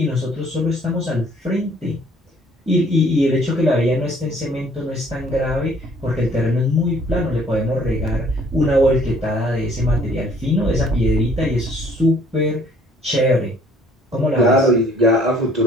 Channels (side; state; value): both; normal; correlation 0.58